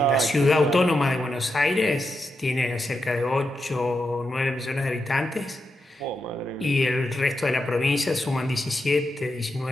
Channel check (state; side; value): normal; both; correlation 0.86